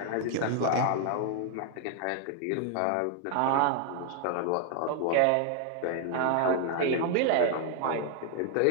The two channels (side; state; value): both; different; correlation 0.00